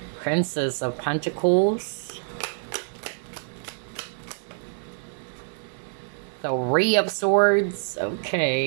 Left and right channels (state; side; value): silent; left; digital silence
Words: Princess of Pentacles. Three of Swords.